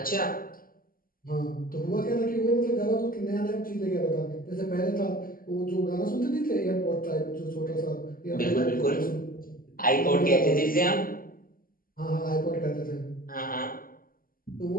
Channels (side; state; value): right; late; 0.42 ms